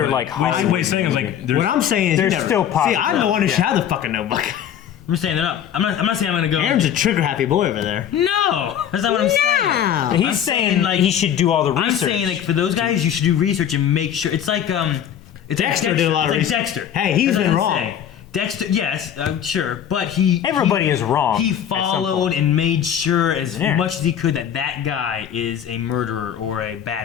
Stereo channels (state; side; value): quieter; right; 9.4 dB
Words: but like what Hollywood. he's saying is like there's What I'm saying is, They're you never, still See, possible. I'm the one who should Yeah. have the fucking notebook. I'm just saying they're not. I'm not saying I'm gonna go. Aaron's a trigger happy boy over there. No, that's not what I'm saying. Yeah. He's I'm saying saying, like like- he should do all the research. I'm saying like for those guys, you should do research and make sure. It's like Dexter did a lot of it's like research. Dexter. Hey, he's That's what been I'm wrong. saying. Dexter, yes, sure, but he Everybody is wrong He at some followed point. and made sure as Yeah. much as he could that guy is a murderer or a